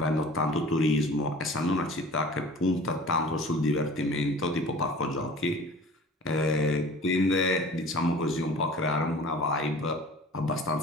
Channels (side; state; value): both; normal; correlation 0.43